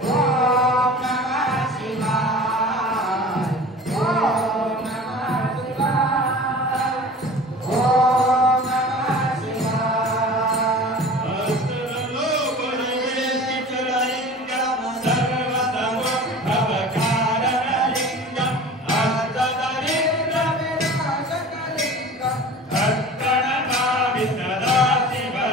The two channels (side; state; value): both; normal; correlation 0.40